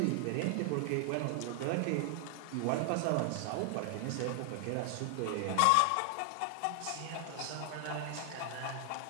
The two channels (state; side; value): different; both; correlation 0.00